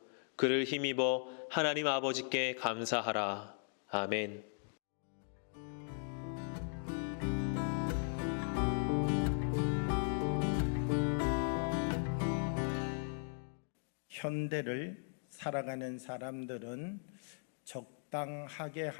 그를 힘입어 하나님 아버지께 감사하라. 아멘. 현대를 살아가는 사람들은 적당하게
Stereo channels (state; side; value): silent; right; 52 dB below the other